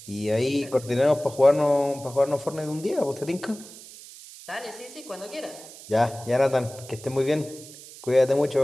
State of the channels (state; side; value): noise; right; hiss, 17 dB below the sound